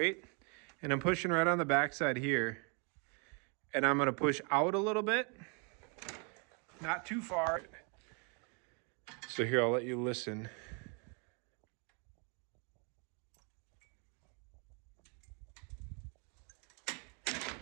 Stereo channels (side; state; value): left; quieter; 36.1 dB